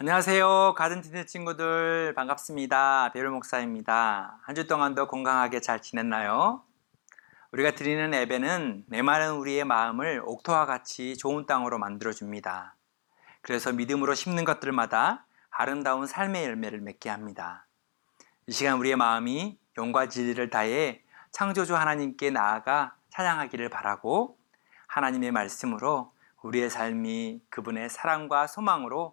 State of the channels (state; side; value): silent; right; digital silence